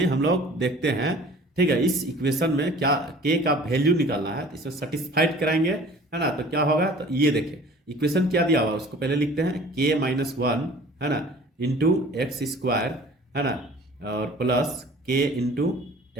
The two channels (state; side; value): normal; both; correlation 0.47